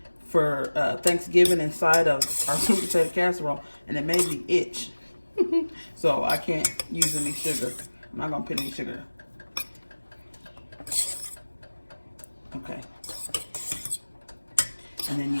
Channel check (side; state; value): both; inverted; correlation -1.00